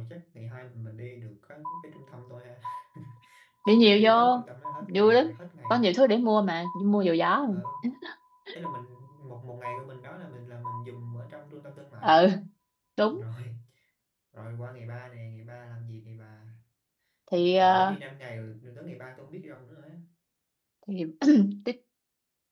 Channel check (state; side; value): identical; both; correlation 1.00